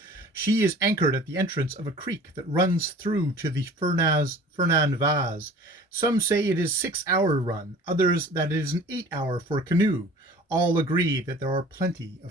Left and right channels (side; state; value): both; normal; correlation 0.45